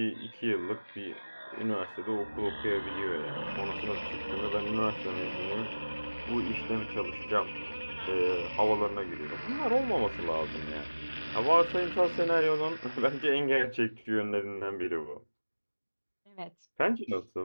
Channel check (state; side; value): inverted; both; correlation -1.00